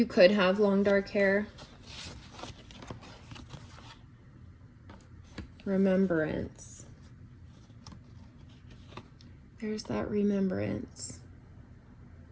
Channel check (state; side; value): identical; both; correlation 1.00